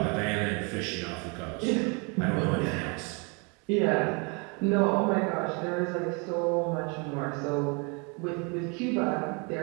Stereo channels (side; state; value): left; quieter; 32.6 dB